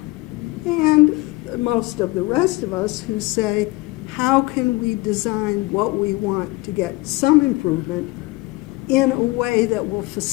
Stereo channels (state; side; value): quieter; right; 21.9 dB